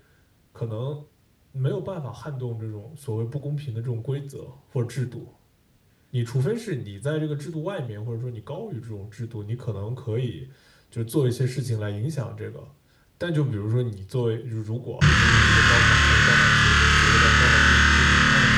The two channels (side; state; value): both; identical; correlation 1.00